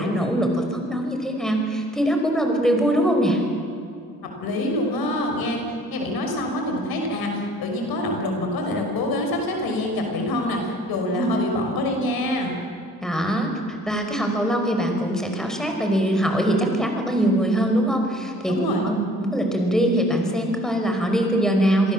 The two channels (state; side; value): normal; both; correlation 0.54